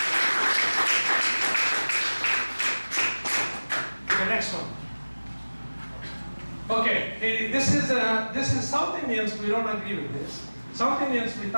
Okay, next one. Okay, this is South Indians, we don't agree with this. South Indians, we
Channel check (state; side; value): inverted; both; correlation -1.00